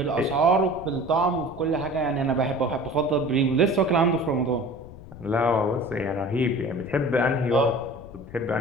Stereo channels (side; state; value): left; noise; rumble, 17 dB below the sound